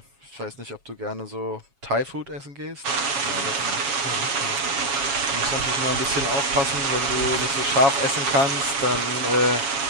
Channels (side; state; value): left; late; 7.2 ms